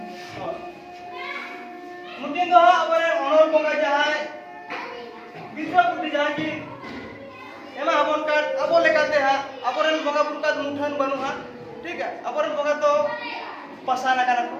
मुद्दे तो अबरे ओनर बोंगा जहाय बिस्वा पुटी जहां की एमा अबन का अबो लेकाते हा अबरन बोंगा पुरका मुठन बनु हा ठीक है अबरन बोंगा तो पासाना कना को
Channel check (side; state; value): both; identical; correlation 1.00